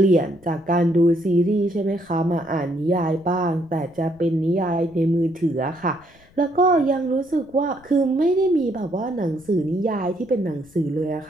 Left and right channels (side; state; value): left; noise; rumble, 28 dB below the sound